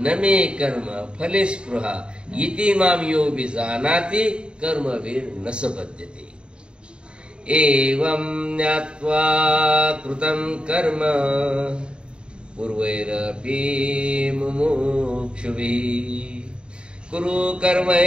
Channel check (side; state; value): left; late; 0.052 ms